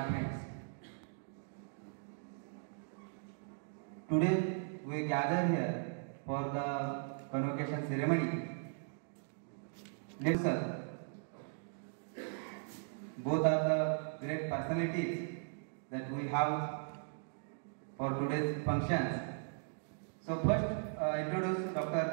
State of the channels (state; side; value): silent; left; digital silence